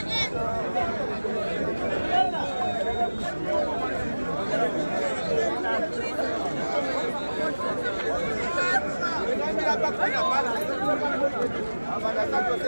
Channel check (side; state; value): both; inverted; correlation -1.00